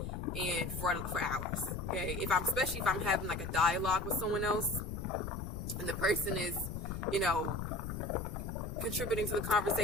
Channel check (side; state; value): left; noise; rumble, 6 dB below the sound